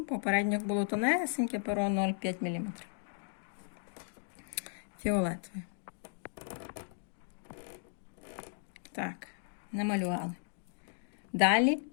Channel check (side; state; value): right; silent; digital silence